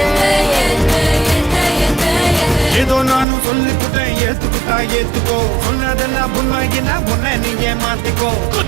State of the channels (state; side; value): drops out; left; at 3.2 s